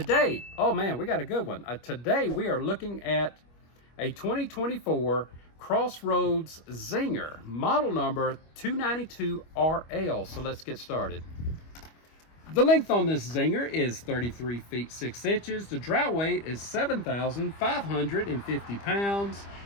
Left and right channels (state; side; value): late; right; 25 ms